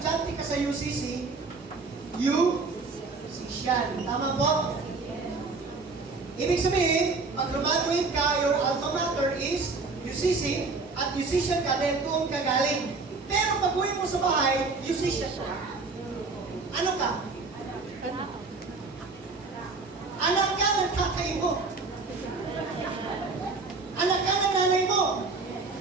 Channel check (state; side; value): quieter; left; 4.0 dB